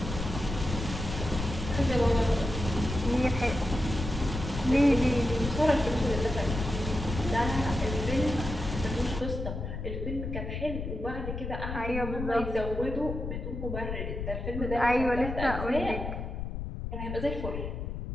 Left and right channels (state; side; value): noise; left; rumble, 5 dB below the sound